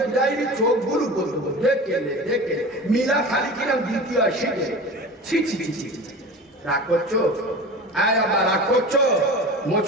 চোখগুলো বলবো দেখে মিলা খালি কিরাম দ্বিতীয় শিখে। ছি ছি ছি ছি, রাগ করছো? আবার রাগ করছো?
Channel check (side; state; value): both; normal; correlation 0.34